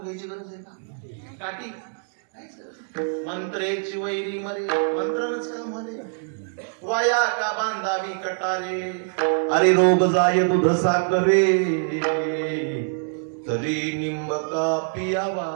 गरज आहे का? काठी मंत्रेची वैरी मरे, मंत्रानच काम म्हणे, वाया का बांधावी कटारे. अरे रोग जाय दूध साखरे तरी निंब का पियावा.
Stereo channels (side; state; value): left; silent; digital silence